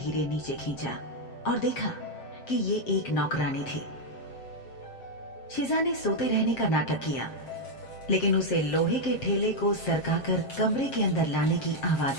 नीचे खींचा और देखा कि ये एक नौकरानी थी। शिजा ने सोते रहने का नाटक किया, लेकिन उसे लोहे के ठेले को सरकाकर कमरे के अंदर लाने की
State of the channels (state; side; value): late; right; 7.6 ms